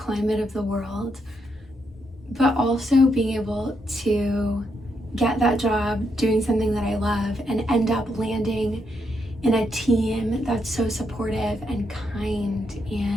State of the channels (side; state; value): both; normal; correlation 0.79